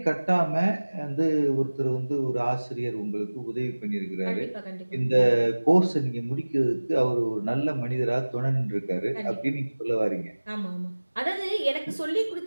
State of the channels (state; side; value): inverted; both; correlation -1.00